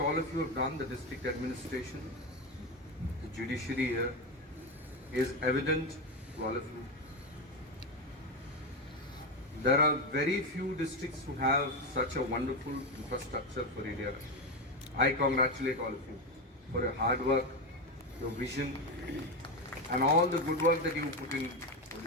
all of you have done, the district administration, the judiciary here, is evident to all of you. There are very few districts who have such a wonderful infrastructure for ADR. I congratulate all of you for your hard work, your vision, and all the good work that you put in for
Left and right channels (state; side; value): normal; both; correlation 0.13